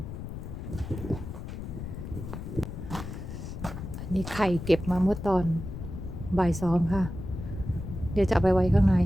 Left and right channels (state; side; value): noise; left; rumble, 8 dB below the sound